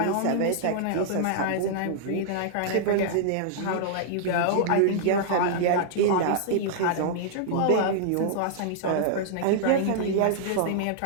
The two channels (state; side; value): different; both; correlation -0.01